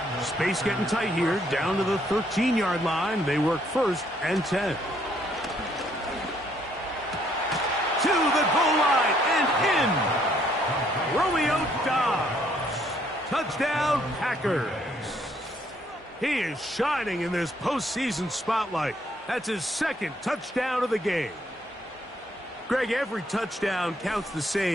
Space getting tight here, down to the 13-yard line. They work 1st and 10. To the goal line and in. Romeo Dobbs. Touchdown, Packers. He is shining in this postseason spotlight. That's his 2nd touchdown of the game. Greg, every touchdown counts the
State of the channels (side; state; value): both; normal; correlation 0.68